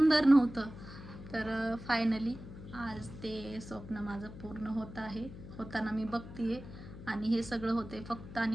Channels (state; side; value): noise; left; hum, 13 dB below the sound